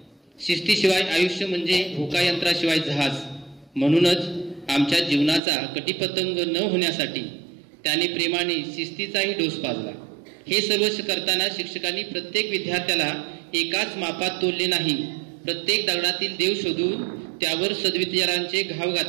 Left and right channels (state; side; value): drops out; left; at 5.4 s